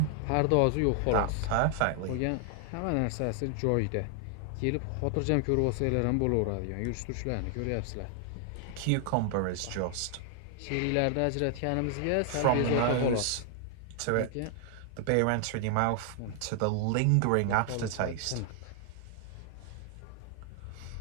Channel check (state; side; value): different; both; correlation 0.00